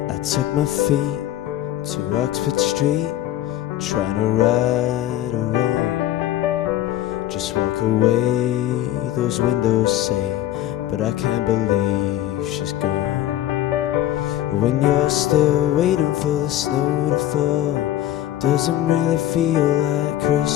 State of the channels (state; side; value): quieter; right; 13.2 dB